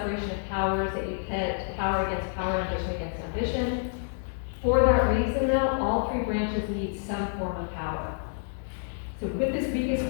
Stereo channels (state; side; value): silent; right; digital silence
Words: of powers, that you pit power against power, ambition against ambition. For that reason, though, all three branches need some form of power. So with this weakest